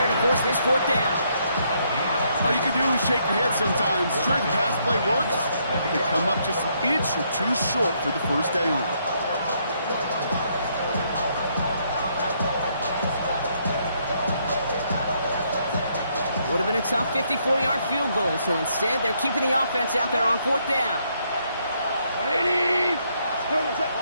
to force this 4th down. All you can do is shake your head sometimes. Sure, the pass play works, but they come up just an inch or 2 short for the 1st down. Would have been a tough 54-yard field goal, so instead they're keeping the offense out there on 4th down. 180.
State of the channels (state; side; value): inverted; both; correlation -0.73